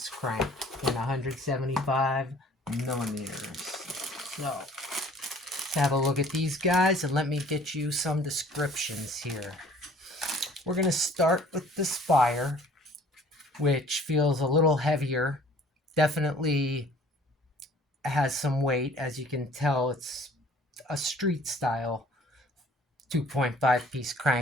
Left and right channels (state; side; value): normal; both; correlation 0.53